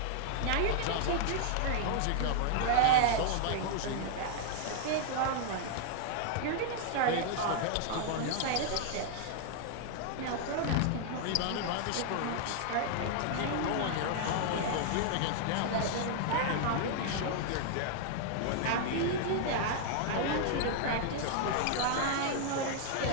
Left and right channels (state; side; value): different; both; correlation -0.01